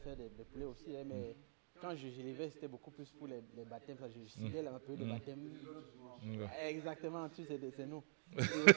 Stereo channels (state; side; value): silent; left; digital silence